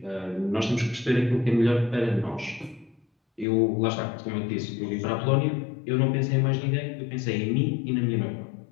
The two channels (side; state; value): right; drops out; at 3.5 s